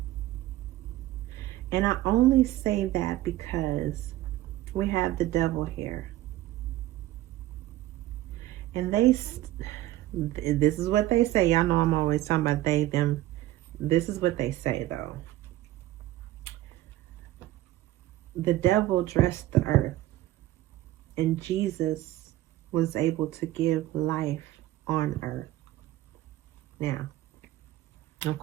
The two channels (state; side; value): quieter; left; 15.4 dB